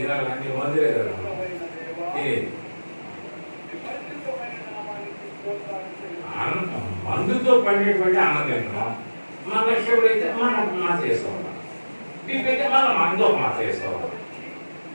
అన్ని మందులే కదా తినేది. మందుతో పండేటువంటి అన్నం తింటున్నాం. మన షుగర్ అయితే మనం మాత్ర వేసుకోవాలి, బీపీ అయితే మనం మందు ఒక మాత్ర వేసుకోవాలి.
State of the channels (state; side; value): inverted; both; correlation -1.00